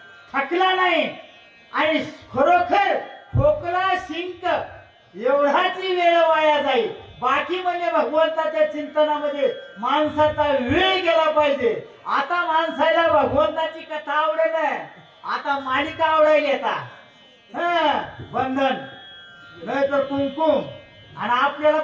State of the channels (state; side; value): identical; both; correlation 1.00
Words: थकला नाही. आणि खरोखर खोकला शिंक एवढाची वेळ वाया जाईल. बाकी म्हणजे भगवंताच्या चिंतनामध्ये माणसाचा वेळ गेला पाहिजे. आता माणसाला भगवंताची कथा आवडेल, आता मालिका आवडायला येतात. बंधन नाही तर कुमकुम आणि आपल्याला